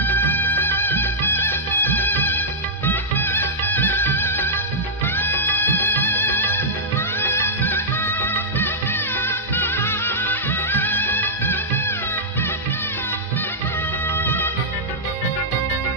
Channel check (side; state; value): both; normal; correlation -0.10